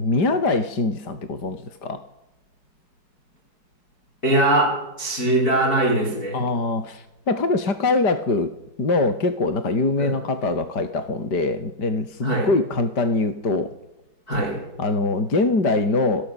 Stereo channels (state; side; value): late; right; 4.6 ms